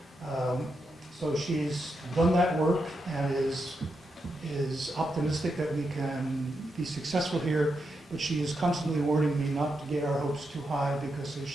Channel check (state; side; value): normal; both; correlation 0.84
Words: So she's done that work and is optimistic that we can be successful here, but she is constantly warning me not to get our hopes too high because, as